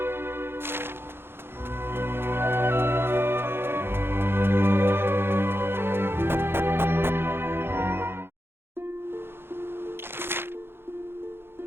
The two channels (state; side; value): late; left; 0.11 ms